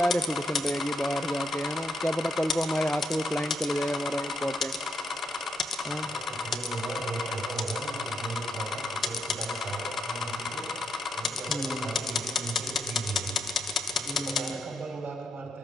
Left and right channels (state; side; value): normal; both; correlation 0.79